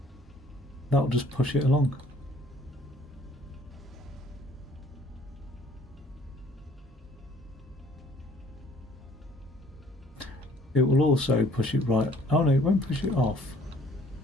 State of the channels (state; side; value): normal; both; correlation 0.58